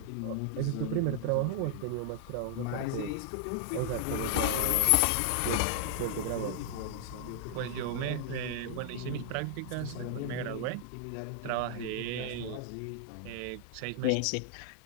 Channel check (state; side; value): different; both; correlation -0.01